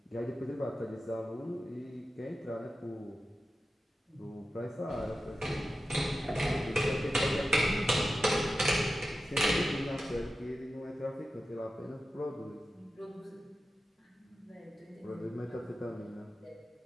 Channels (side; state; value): both; normal; correlation 0.92